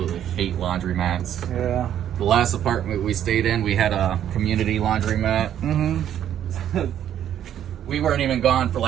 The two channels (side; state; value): left; quieter; 10.4 dB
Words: hate laundromats. Yeah. The last apartment we stayed in, we had a community laundromat. Mm-hmm. We weren't even gone for